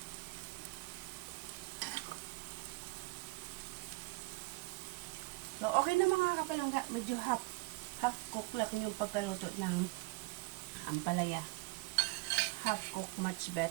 So, okay na mga kapalangga. Medyo half cook lang yung pagkaluto ng ampalaya. Half cook, much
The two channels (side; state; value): left; quieter; 24.1 dB